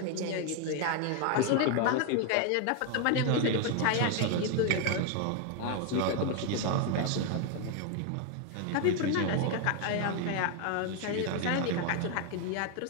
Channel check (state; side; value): different; both; correlation 0.01